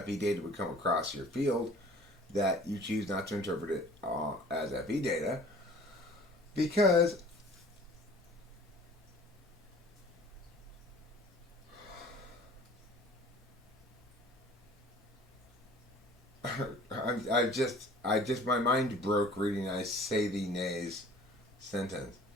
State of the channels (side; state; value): both; normal; correlation 0.48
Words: data would come across your field that you choose not to interpret it as FE data because my mind broke reading I say thee nays sentence.